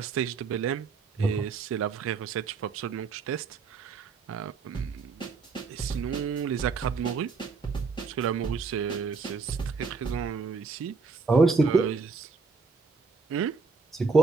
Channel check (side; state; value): left; quieter; 4.7 dB